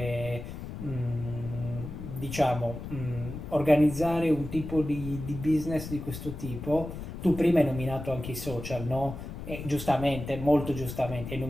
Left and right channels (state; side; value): noise; left; rumble, 9 dB below the sound